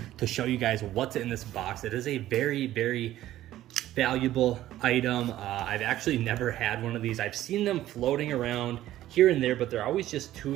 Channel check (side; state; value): left; quieter; 13.9 dB